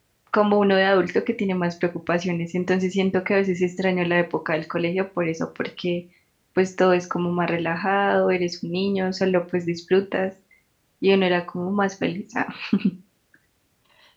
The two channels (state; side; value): identical; both; correlation 1.00